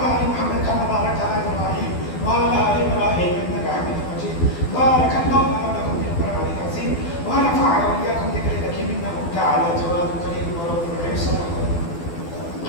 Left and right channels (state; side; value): late; right; 12 ms